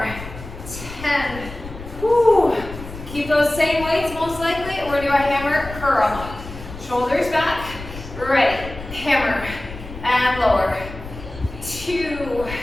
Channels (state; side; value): noise; left; rumble, 12 dB below the sound